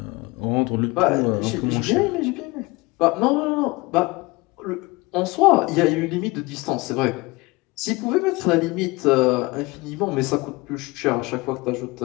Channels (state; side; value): quieter; right; 23.6 dB